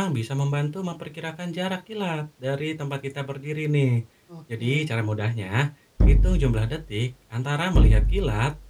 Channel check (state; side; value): identical; both; correlation 1.00